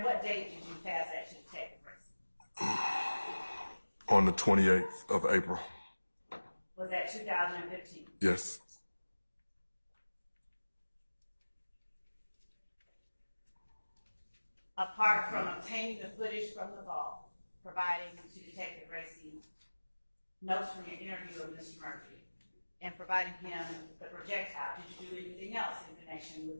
what date did you pass that to Detective Racy? on the 28th of April. Was that 2015? Yes. Apart from obtaining the footage from the vault, providing to Detective Racy notes from your interview with Mr. Murphy, and providing him the projectile, did you do anything else in connection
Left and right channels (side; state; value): both; inverted; correlation -1.00